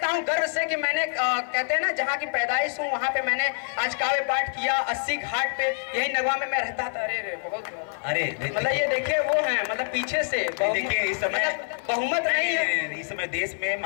हूं गर्व से कि मैंने, कहते हैं ना, जहाँ की पैदाइश हूँ वहाँ पे मैंने आज काव्य पाठ किया। 80 घाट पे, यही नगवा में मैं रहता था। अरे बहुत, अरे मतलब ये देखिए वो है, मतलब पीछे से देखिए इस समय बहुमत नहीं है। इस समय देश में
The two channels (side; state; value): right; silent; 61 dB below the other